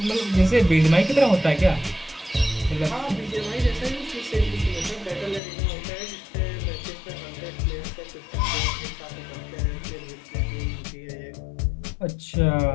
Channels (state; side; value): drops out; right; at 5.4 s